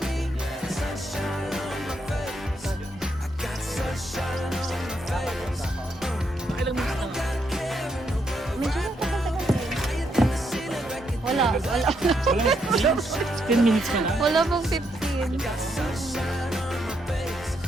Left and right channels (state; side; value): normal; both; correlation 0.78